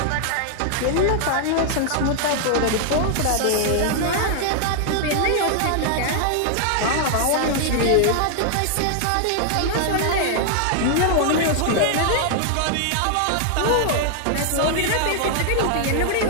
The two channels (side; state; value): both; different; correlation 0.00